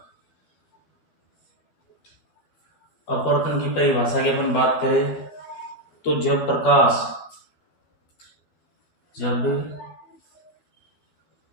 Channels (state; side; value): late; right; 12 ms